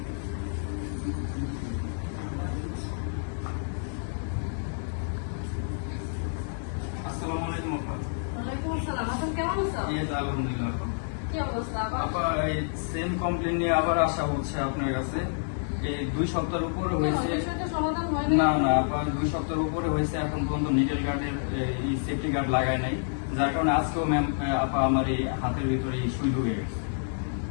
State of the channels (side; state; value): right; silent; digital silence